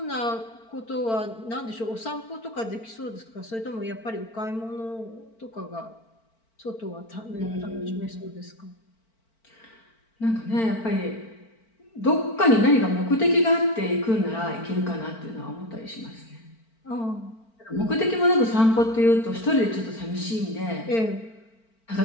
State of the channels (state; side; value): late; right; 4.5 ms